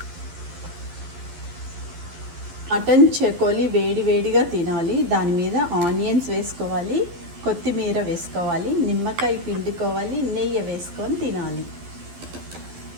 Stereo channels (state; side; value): late; left; 12 ms